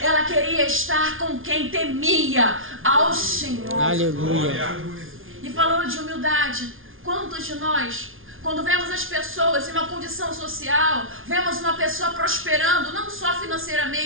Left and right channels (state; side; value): late; left; 0.59 ms